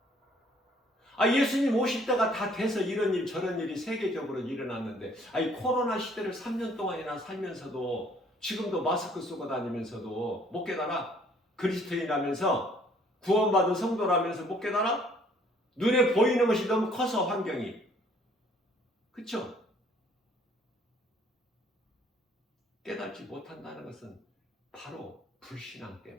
예수님 오실 때가 다 돼서 이런 일 저런 일이 세계적으로 일어났는데, 코로나 시대를 3년 동안이나 살면서도, 지금도 마스크 쓰고 다니면서도 못 깨달아? 그리스도인이라면서, 구원받은 성도라면서 못 깨달아? 눈에 보이는 것이 너무 커서, 환경이. 그쵸? 깨닫지 못한다는 것은 바로 불신앙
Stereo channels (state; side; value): normal; both; correlation 0.60